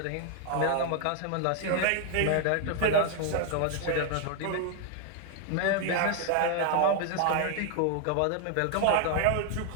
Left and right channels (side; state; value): both; different; correlation 0.01